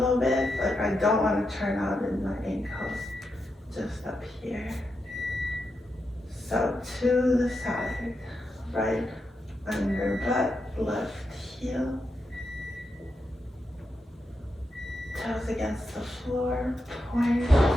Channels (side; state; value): both; normal; correlation 0.86